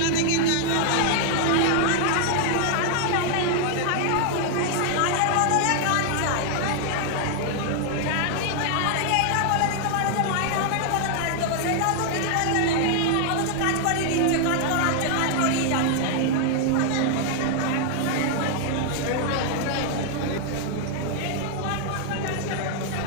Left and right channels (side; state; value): both; different; correlation 0.00